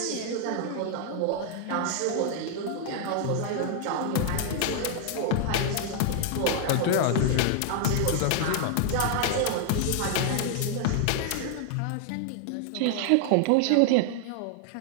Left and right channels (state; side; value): different; both; correlation 0.00